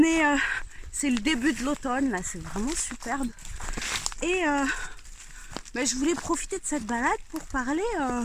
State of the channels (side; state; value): both; identical; correlation 1.00